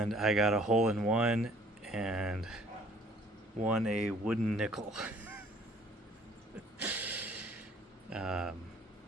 I got a hole in one and won a wooden nickel. I'm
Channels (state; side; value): normal; both; correlation 0.57